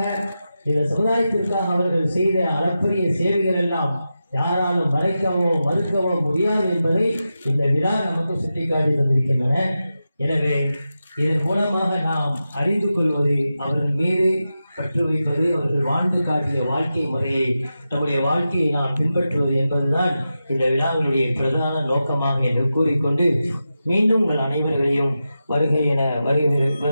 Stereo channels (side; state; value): both; inverted; correlation -0.91